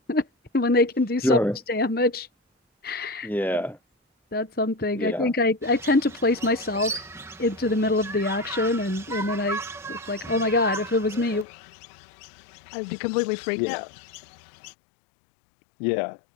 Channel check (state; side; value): drops out; right; at 11.5 s